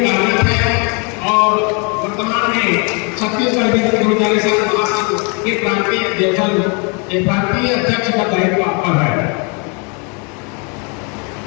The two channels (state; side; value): quieter; right; 34.1 dB